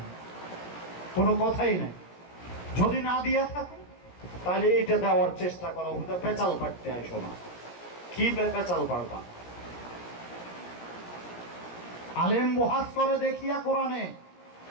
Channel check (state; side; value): late; right; 17 ms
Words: কোনো কথাই নাই। যদি না দিয়া থাকো তাহলে এটা দেওয়ার চেষ্টা করো, পেঁচাল পাড়তে আইসো না। কি পেঁচাল পাড়বা? আলেম বহাস করে দেখিয়া কোরআনে,